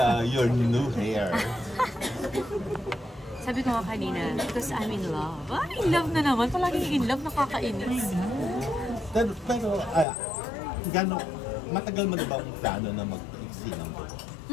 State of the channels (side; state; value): right; drops out; at 10.1 s